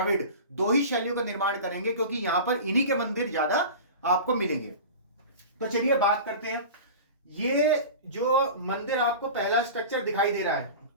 दो ही शैलियों का निर्माण करेंगे क्योंकि यहां पर इन्हीं के मंदिर ज्यादा आपको मिलेंगे। तो चलिए बात करते हैं। ये जो मंदिर आपको पहला स्ट्रक्चर दिखाई दे रहा है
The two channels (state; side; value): inverted; both; correlation -0.33